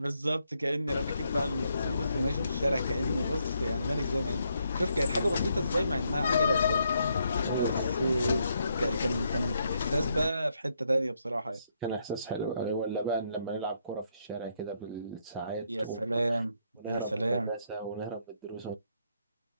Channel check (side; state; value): both; inverted; correlation -0.76